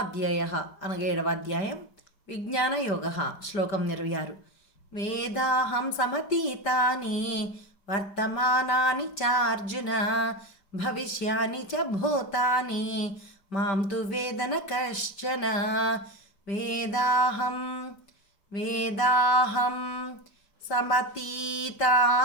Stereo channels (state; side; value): late; right; 5.1 ms